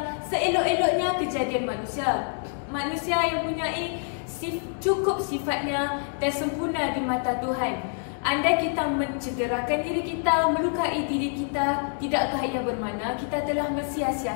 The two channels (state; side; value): silent; right; 60 dB below the other